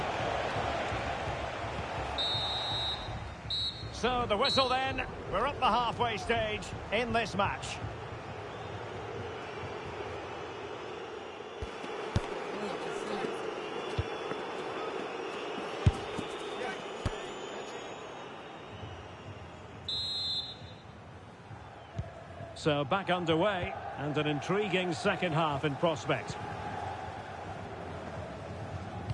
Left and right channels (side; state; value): both; identical; correlation 1.00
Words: So the whistle then. We're up the halfway stage in this match. So back underway, and an intriguing second half in prospect.